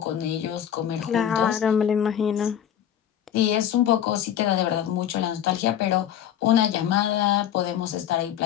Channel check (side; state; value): right; quieter; 10.0 dB